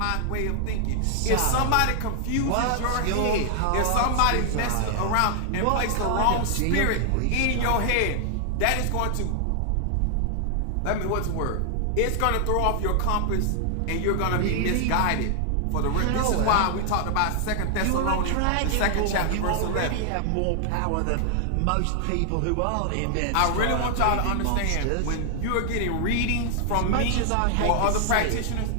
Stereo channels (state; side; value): different; both; correlation 0.00